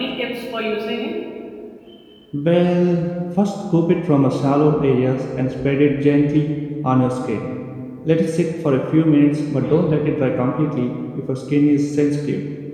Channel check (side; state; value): both; identical; correlation 1.00